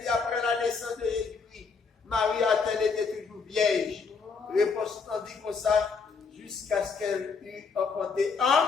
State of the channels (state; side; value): quieter; right; 5.1 dB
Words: après la naissance de Jésus-Christ, Marie a-t-elle été toujours vierge? Réponse non dit comme ça, jusqu'à ce qu'elle eût emporté